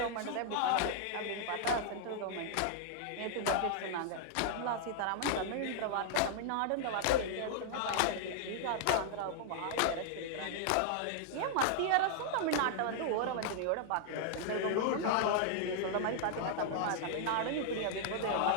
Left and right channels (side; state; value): both; different; correlation -0.01